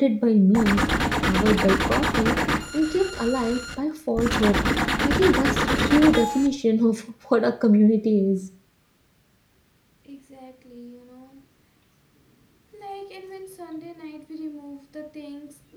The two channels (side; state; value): both; identical; correlation 1.00